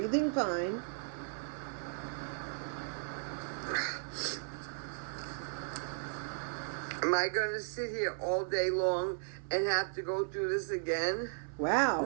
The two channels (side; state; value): left; silent; 54 dB below the other